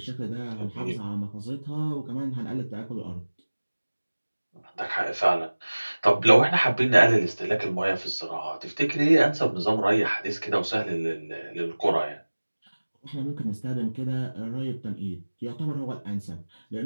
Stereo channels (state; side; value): inverted; both; correlation -1.00